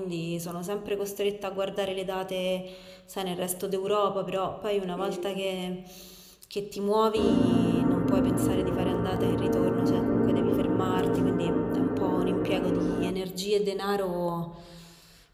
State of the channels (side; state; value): both; identical; correlation 1.00